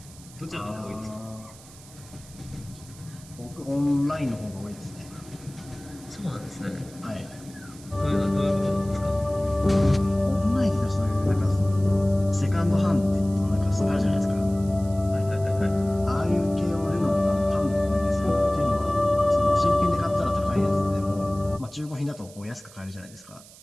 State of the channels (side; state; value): right; noise; hiss, 21 dB below the sound